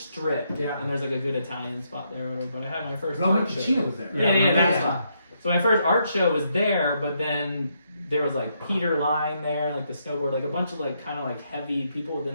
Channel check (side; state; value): both; inverted; correlation -0.77